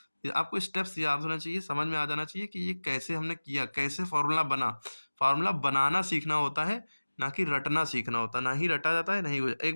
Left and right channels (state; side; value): inverted; both; correlation -1.00